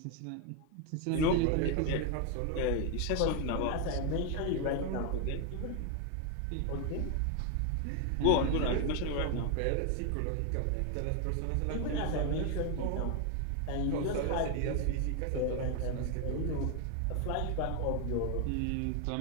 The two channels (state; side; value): different; both; correlation 0.01